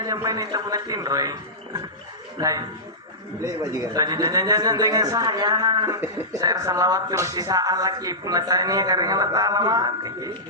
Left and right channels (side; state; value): both; normal; correlation -0.15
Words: main itu punatin roy lain jangan dengan saya salawat terus sisaan lagi punatanya karena Allah mati